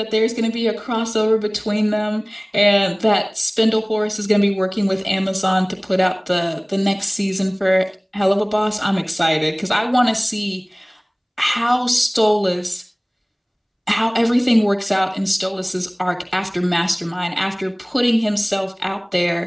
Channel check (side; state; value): both; identical; correlation 1.00